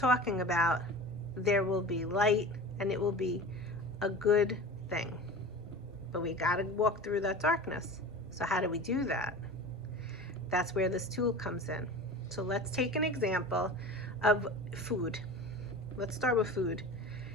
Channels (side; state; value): both; normal; correlation 0.34